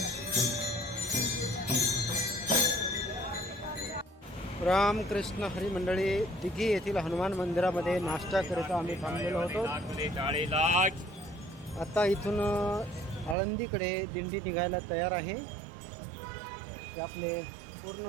रामकृष्ण हरी मंडळी, दिघी येथील हनुमान मंदिरामध्ये नाश्ता करिता आम्ही थांबलेलो होतो. आता इथून आळंदीकडे दिंडी निघायला तयार आहे. ते आपले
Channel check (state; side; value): drops out; left; at 13.4 s